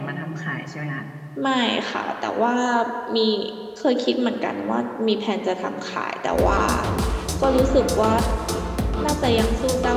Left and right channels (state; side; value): identical; both; correlation 1.00